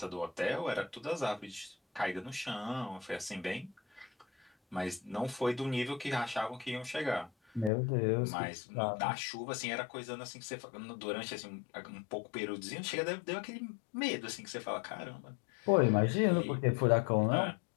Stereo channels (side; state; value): right; drops out; at 7.7 s